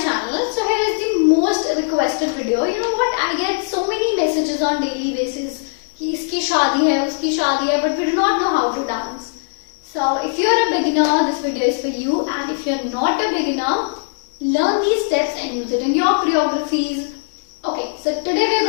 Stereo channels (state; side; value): silent; right; digital silence